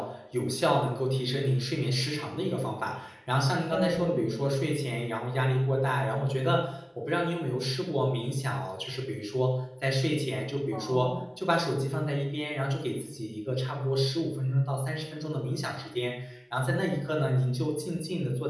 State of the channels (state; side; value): identical; both; correlation 1.00